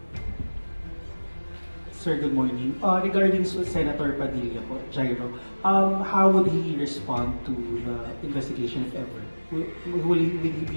Sir, good morning. Regarding Senator Padilla po, Jairo, how would he respond to the investigation if ever? Will he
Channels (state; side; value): inverted; both; correlation -1.00